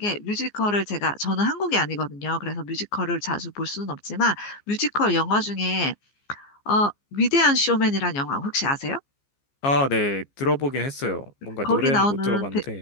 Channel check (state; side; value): late; right; 15 ms